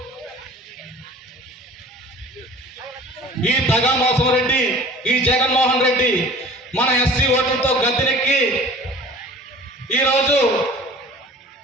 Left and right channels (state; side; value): normal; both; correlation 0.44